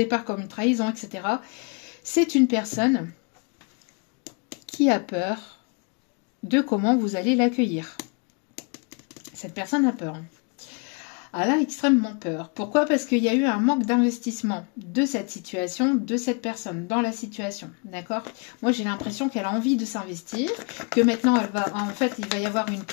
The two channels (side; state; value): right; quieter; 35.1 dB